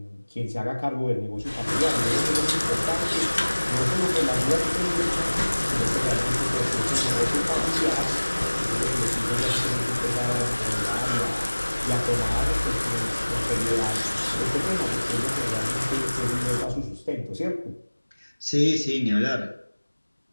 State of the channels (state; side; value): inverted; both; correlation -1.00